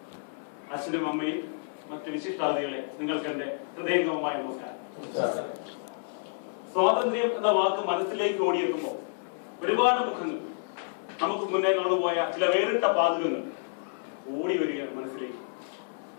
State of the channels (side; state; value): right; silent; 58 dB below the other